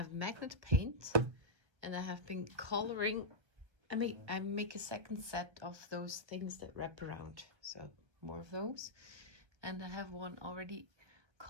magnet paint, and I have been coloring. I make a second set of those things that wrap around, so more of those. And I have one already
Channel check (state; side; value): late; left; 1.3 ms